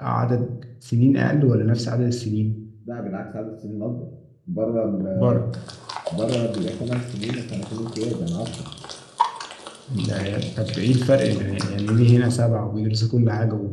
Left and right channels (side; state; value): both; identical; correlation 1.00